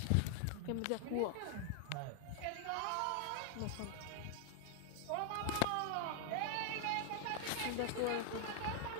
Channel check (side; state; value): both; different; correlation 0.00